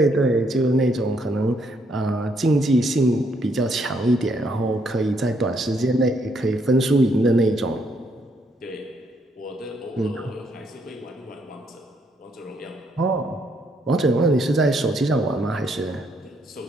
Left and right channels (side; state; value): both; normal; correlation 0.72